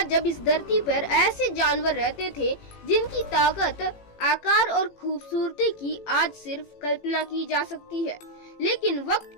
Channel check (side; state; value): right; late; 18 ms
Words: जब इस धरती पर ऐसे जानवर रहते थे जिनकी ताकत, आकार और खूबसूरती की आज सिर्फ कल्पना की जा सकती है, लेकिन वक्त